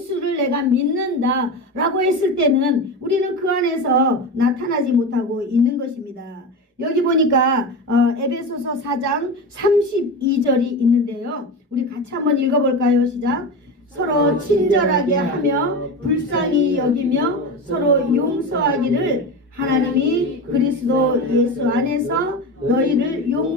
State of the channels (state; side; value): normal; both; correlation 0.23